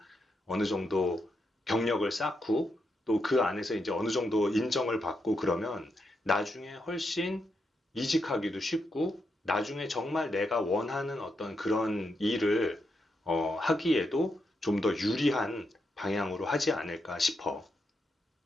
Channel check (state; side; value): normal; both; correlation 0.83